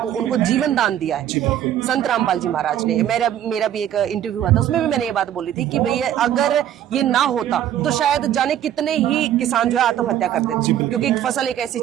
उनको जीवन दान दिया है संत रामपाल जी महाराज ने। मेरा भी एक इंटरव्यू हुआ था, उसमें भी मैंने ये बात बोली थी कि भैया अगर ये ना होता तो शायद जाने कितने ही किसान जो है आत्महत्या कर देते, क्योंकि फसल एक ऐसी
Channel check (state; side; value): quieter; left; 11.0 dB